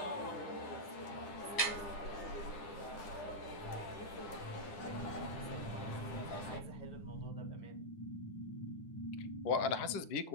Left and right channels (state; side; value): late; right; 9.9 ms